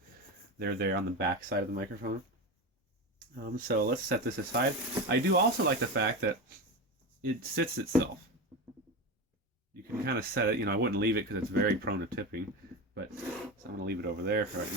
they're there on the back side of the microphone. So let's set this aside. I do also like the fact that it sits itself. You can kind of set it, I wouldn't leave it because it's very prone to tipping, but so I'm going to leave it over there for right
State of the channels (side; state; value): both; normal; correlation 0.21